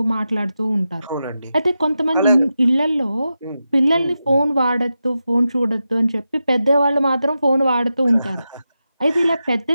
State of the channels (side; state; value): both; inverted; correlation -0.90